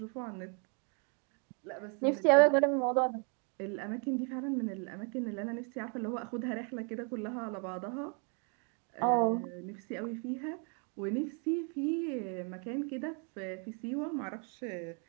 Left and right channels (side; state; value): left; quieter; 38.7 dB